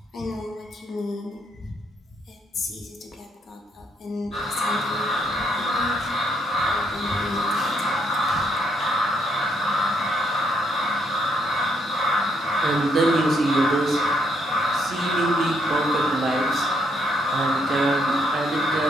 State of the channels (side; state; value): both; normal; correlation 0.73